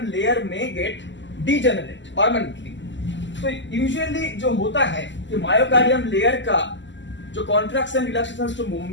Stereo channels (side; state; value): right; late; 0.54 ms